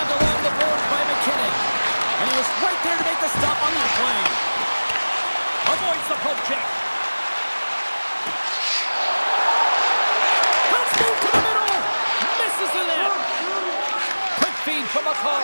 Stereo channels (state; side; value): inverted; both; correlation -1.00